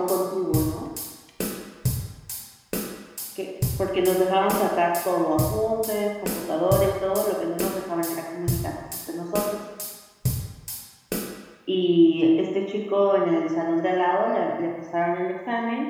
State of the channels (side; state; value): both; identical; correlation 1.00